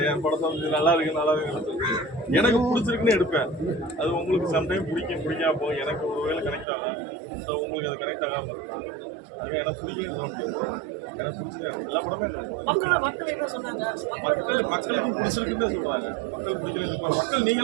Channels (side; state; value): left; drops out; at 6.7 s